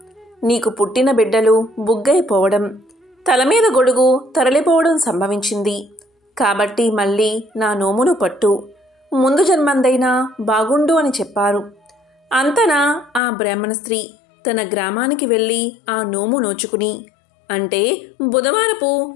నీకు పుట్టిన బిడ్డలు బుగ్గైపోవడం, తలమీద గొడుగు తరలిపోవడం సంభవించింది. కాబట్టి మళ్ళీ నా నోమును పట్టు, ముందు జన్మందైనా బాగుండు అని చెప్పారు. అంతనా ఆ బ్రాహ్మణ స్త్రీ తన గ్రామానికి వెళ్ళి ఆ నోము నోచుకుని, అంటే బుధవారపు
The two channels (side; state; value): right; drops out; at 13.2 s